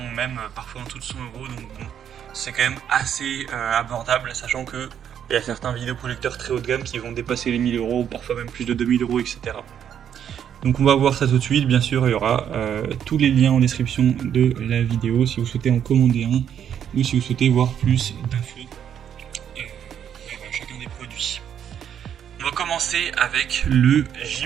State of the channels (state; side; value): quieter; left; 9.1 dB